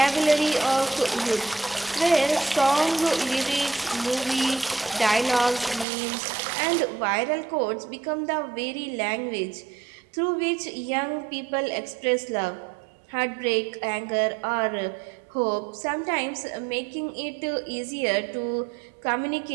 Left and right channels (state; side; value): drops out; left; at 5.9 s